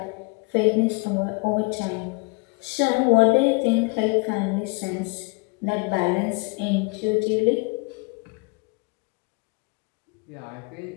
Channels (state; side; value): quieter; right; 30.0 dB